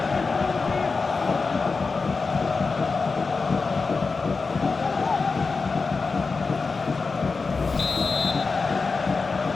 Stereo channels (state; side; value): quieter; right; 4.4 dB